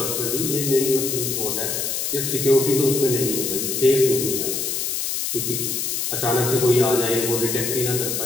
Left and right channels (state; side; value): noise; left; hiss, 1 dB below the sound